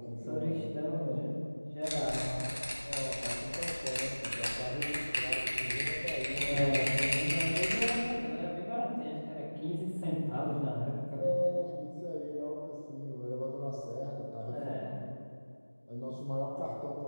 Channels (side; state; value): both; inverted; correlation -1.00